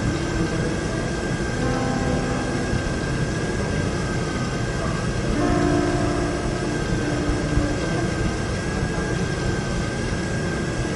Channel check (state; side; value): identical; both; correlation 1.00